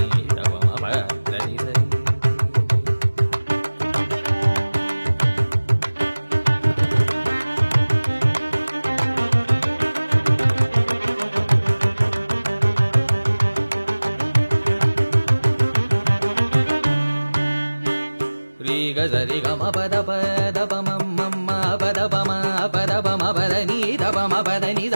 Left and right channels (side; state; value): both; inverted; correlation -1.00